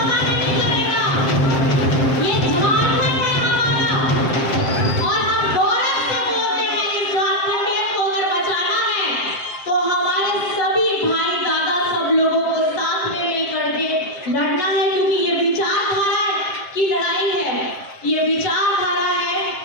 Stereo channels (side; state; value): right; late; 7.6 ms